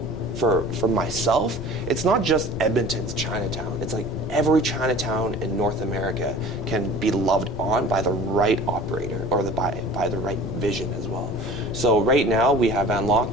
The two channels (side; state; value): left; noise; rumble, 9 dB below the sound